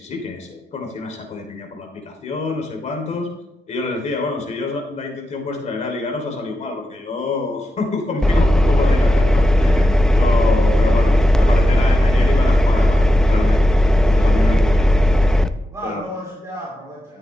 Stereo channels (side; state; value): both; normal; correlation 0.89